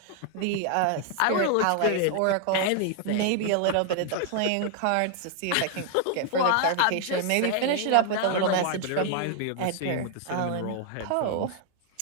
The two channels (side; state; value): both; different; correlation 0.00